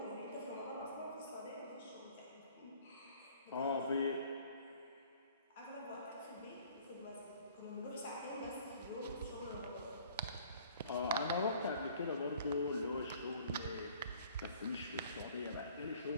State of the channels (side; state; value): both; inverted; correlation -0.54